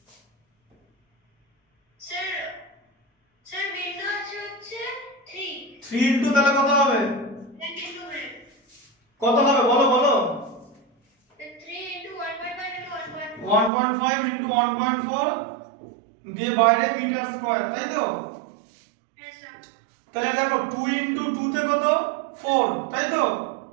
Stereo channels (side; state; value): left; drops out; at 13.7 s